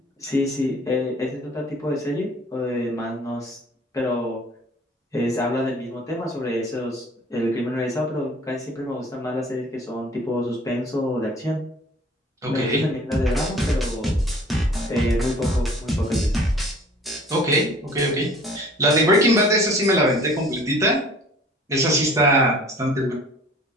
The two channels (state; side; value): normal; both; correlation 0.50